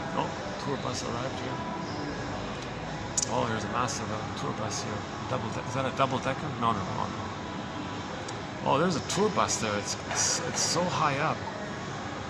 Oh, tour bus arrived here. Oh, there's a massive tour bus here. Is that a double-decker? No. Oh, there's a tour bus there. It's so high up.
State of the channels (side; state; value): both; identical; correlation 1.00